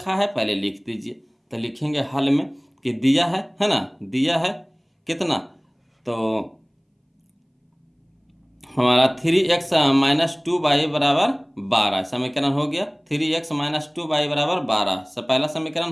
है, पहले लिख दीजिए, तो लिखेंगे हल में कि दिया है ना, दिया है कितना, तो हमारा 3x - 2y = 12 समीकरण हो गया, 3x - 2y = 12 से पहला समीकरण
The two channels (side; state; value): both; identical; correlation 1.00